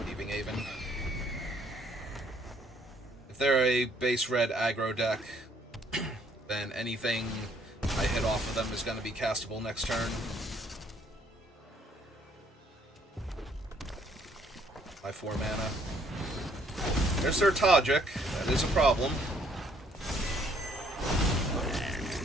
leaving Haven. If they're a base red aggro deck, then anything I hit off of them is going to be castable next turn. My 4 mana. There's their Tajik. That is a problem.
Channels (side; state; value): both; normal; correlation 0.65